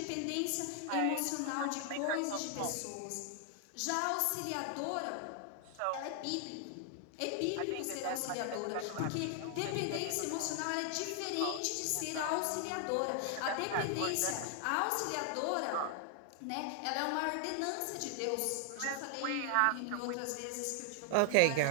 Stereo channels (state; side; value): different; both; correlation 0.00